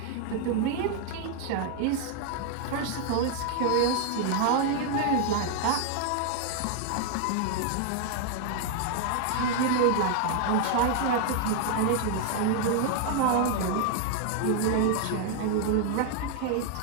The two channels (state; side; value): different; both; correlation 0.00